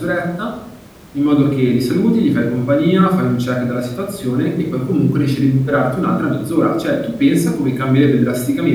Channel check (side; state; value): both; identical; correlation 1.00